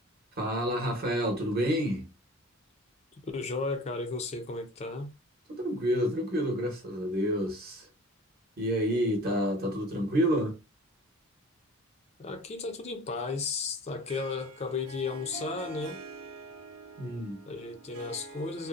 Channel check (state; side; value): normal; both; correlation 0.43